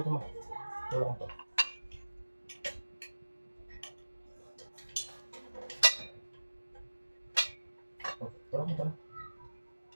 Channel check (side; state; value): both; inverted; correlation -1.00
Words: ito mo? Wala ko to. Wala ko to.